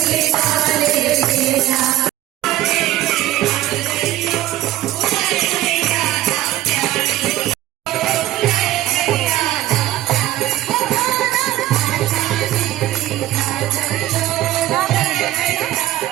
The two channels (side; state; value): left; quieter; 14.7 dB